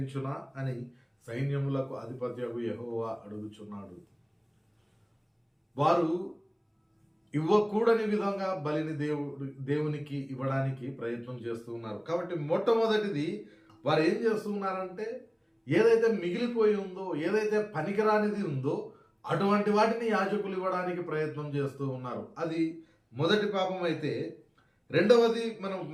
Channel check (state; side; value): identical; both; correlation 1.00